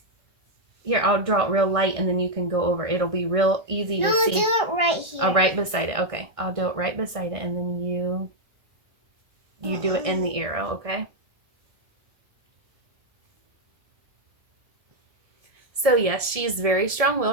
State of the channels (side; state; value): left; late; 1.7 ms